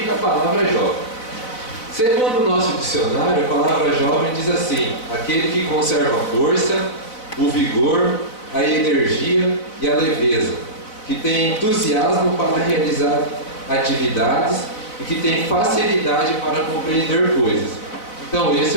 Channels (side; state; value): right; late; 4.0 ms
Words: a palavra jovem? Segundo o nosso dicionário, a palavra jovem diz assim: aquele que conserva a força, o vigor, a energia e a leveza, que tem entusiasmo para realizar atividades e que tem facilidade para compreender coisas. Então esse